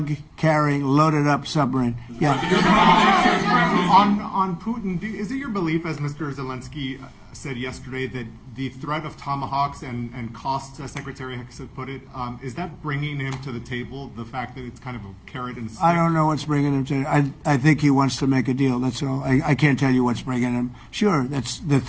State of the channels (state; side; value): identical; both; correlation 1.00